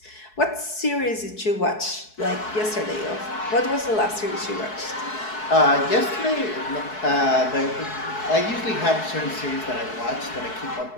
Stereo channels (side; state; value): right; late; 4.7 ms